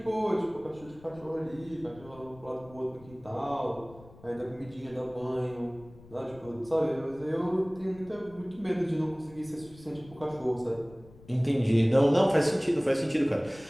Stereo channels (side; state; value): left; noise; rumble, 22 dB below the sound